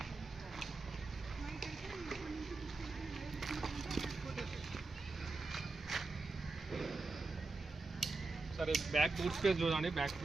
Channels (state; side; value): quieter; left; 3.5 dB